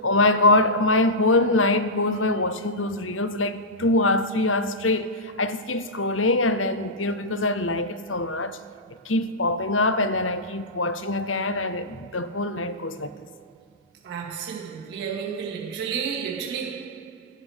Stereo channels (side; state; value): both; normal; correlation -0.14